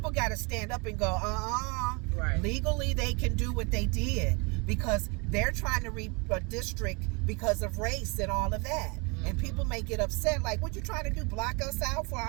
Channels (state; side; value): quieter; left; 30.5 dB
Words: got to stand up and go, Right. Legally, they can do what they did because they're trying to redistrict because of race and all of that. And people may get upset, like, what you trying to do, block us out for